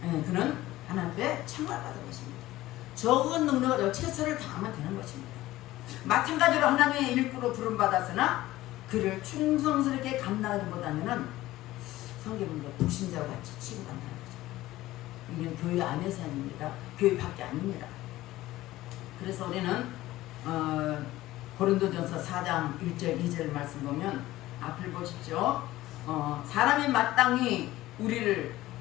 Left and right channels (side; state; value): right; quieter; 16.4 dB